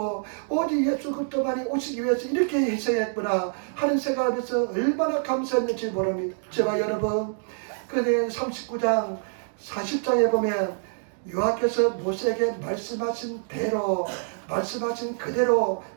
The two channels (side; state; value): left; silent; digital silence